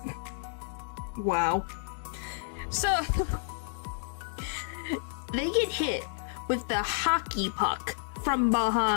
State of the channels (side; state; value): right; silent; digital silence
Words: Wow. So, they get hit with the hockey puck from